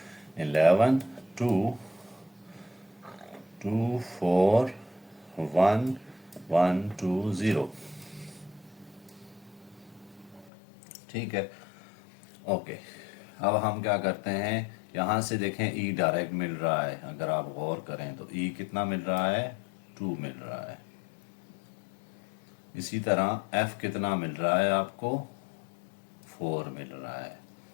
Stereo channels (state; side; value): drops out; right; at 10.5 s